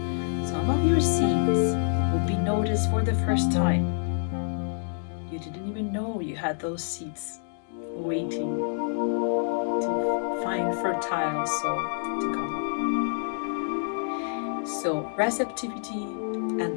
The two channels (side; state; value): right; silent; digital silence